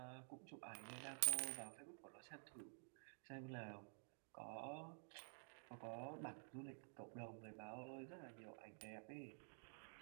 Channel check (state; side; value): silent; left; digital silence